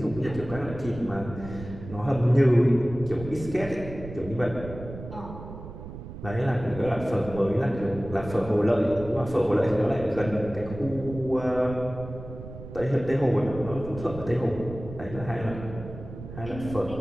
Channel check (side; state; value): right; noise; rumble, 12 dB below the sound